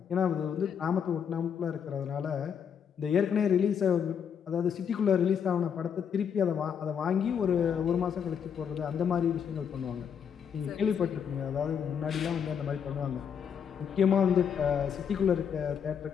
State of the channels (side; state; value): right; quieter; 7.6 dB